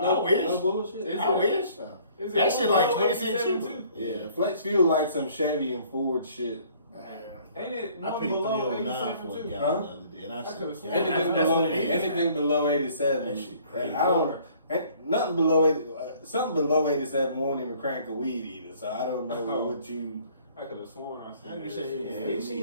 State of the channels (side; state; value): both; inverted; correlation -0.57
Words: I wish. No bullshit. Is I it- wish. Is That it shit like 20 cents 187 cheaper. too? Yeah, flex fuel like some Chevy and Ford shit. Ain't it I one paid below 309 87 for a too? gallon Huh? the other day, and I said, could've sworn. Anything that's below what it is. anything below 87. That shit crazy. I don't. Nothing below 80. Something below 87 won't even crank a weed either. So I don't know Oh. what you. I could have sworn I I seen can that say, shit. yeah, I ain't